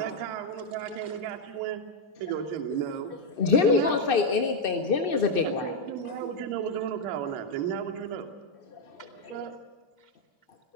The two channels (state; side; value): late; right; 2.6 ms